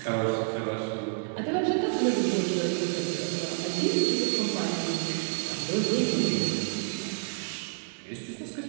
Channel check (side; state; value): left; silent; 59 dB below the other